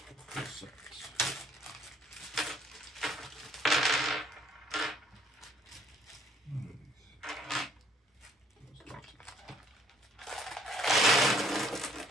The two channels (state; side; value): normal; both; correlation 0.63